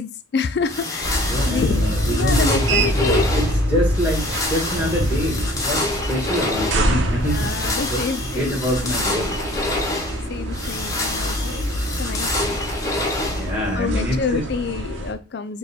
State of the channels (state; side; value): normal; both; correlation 0.50